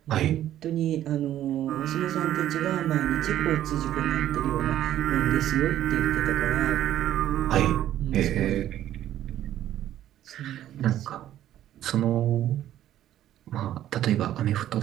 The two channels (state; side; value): quieter; left; 12.2 dB